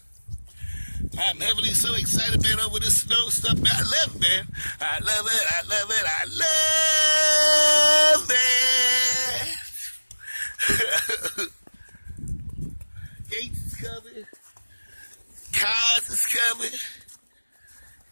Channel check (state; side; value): inverted; both; correlation -1.00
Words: I'm heavily so excited, man, over this snow stuff, man. I love it, man. I love it. Gates is coming. Cars is coming.